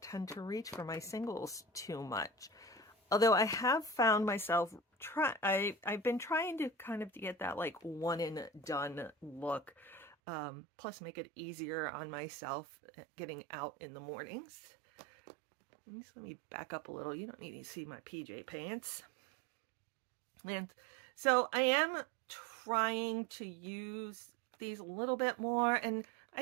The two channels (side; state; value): left; drops out; at 10.2 s